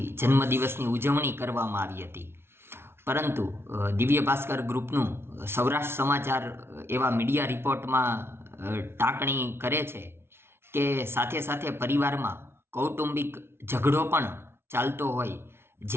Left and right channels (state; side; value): late; left; 0.12 ms